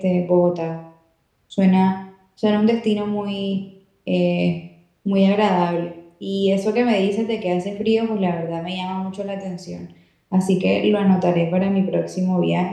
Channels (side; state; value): both; identical; correlation 1.00